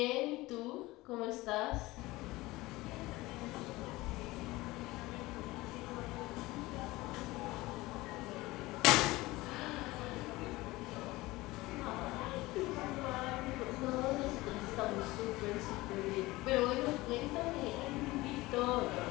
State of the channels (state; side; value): quieter; right; 19.8 dB